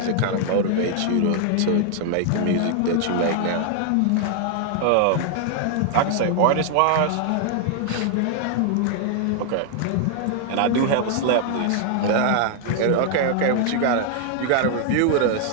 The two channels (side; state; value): both; different; correlation 0.00